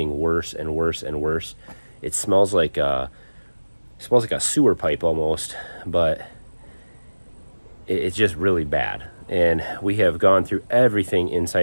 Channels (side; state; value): both; inverted; correlation -1.00